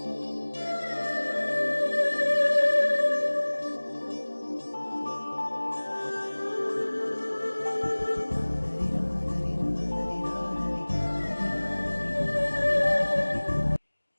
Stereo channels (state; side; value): inverted; both; correlation -1.00